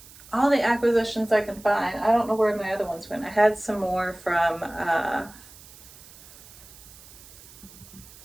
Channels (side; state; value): right; noise; hiss, 20 dB below the sound